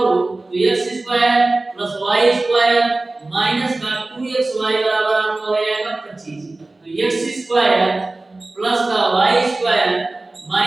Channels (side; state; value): left; quieter; 3.0 dB